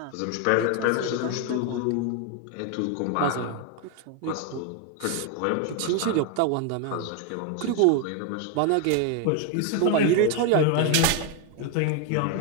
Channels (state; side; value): different; both; correlation 0.01